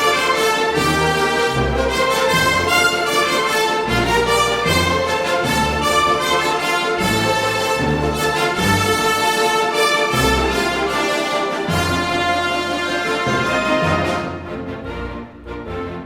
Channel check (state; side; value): identical; both; correlation 1.00